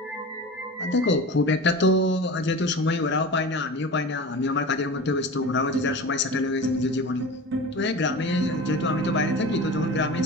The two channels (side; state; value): both; normal; correlation 0.33